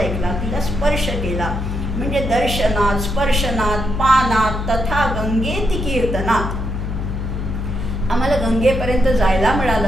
तिला स्पर्श केला म्हणजे दर्शनात, स्पर्शनात, पानात तथा गंगेती कीर्तनात. आम्हाला गंगेपर्यंत जायला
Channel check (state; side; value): noise; left; hum, 4 dB below the sound